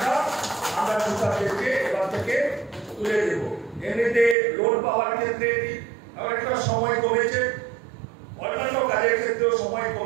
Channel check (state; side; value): drops out; left; at 4.4 s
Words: আমরা কৃষকদেরকে এবার থেকে তুলে দেব। এমনিতে লোন পাওয়ার ক্ষেত্রে একটা সময় কমেছে, অন্যান্য কাজের ক্ষেত্রেও সময়